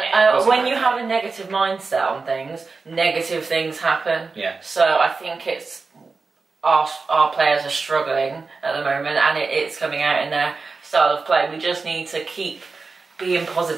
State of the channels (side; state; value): left; quieter; 4.3 dB